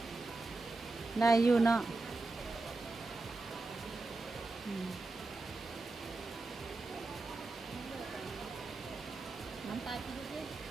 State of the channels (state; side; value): quieter; left; 3.3 dB